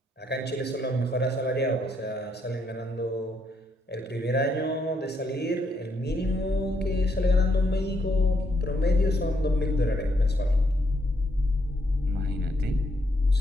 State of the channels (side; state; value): both; normal; correlation 0.75